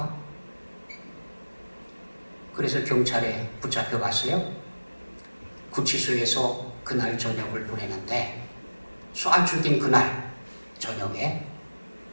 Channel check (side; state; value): both; inverted; correlation -1.00